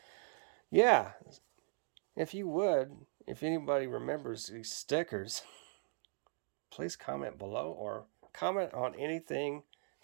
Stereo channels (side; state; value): left; silent; 52 dB below the other